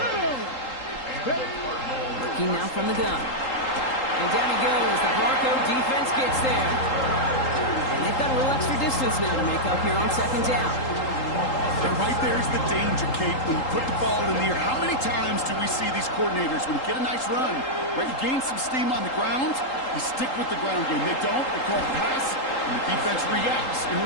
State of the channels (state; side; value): late; right; 3.8 ms